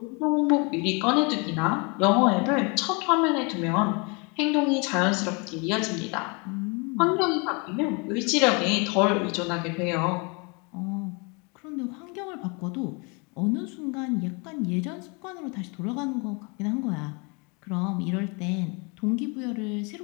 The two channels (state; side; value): quieter; right; 31.5 dB